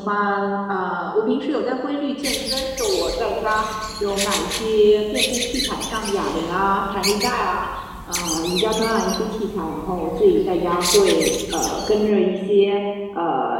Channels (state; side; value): identical; both; correlation 1.00